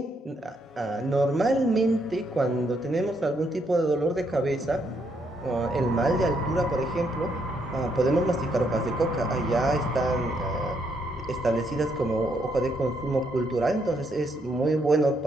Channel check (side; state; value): both; normal; correlation 0.74